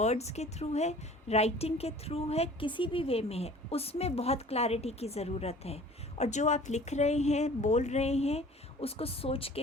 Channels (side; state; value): both; normal; correlation 0.47